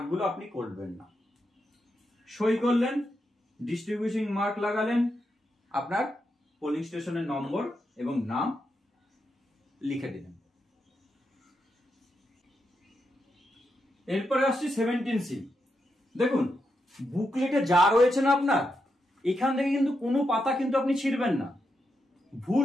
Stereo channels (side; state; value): both; normal; correlation 0.84